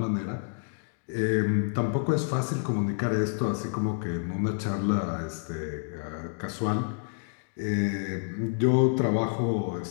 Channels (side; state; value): right; silent; digital silence